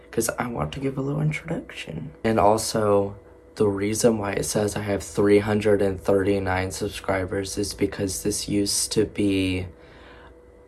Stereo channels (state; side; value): identical; both; correlation 1.00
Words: because I want to give a little introduction. And also, the reason why it says I have 339 subscribers is because this used to be